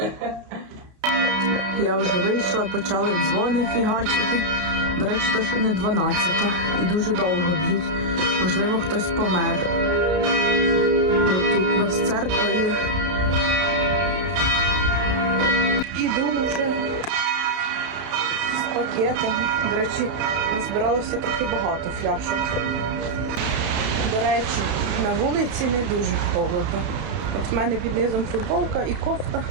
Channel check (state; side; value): late; left; 32 ms